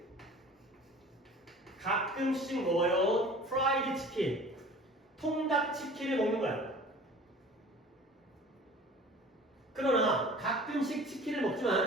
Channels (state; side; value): normal; both; correlation 0.44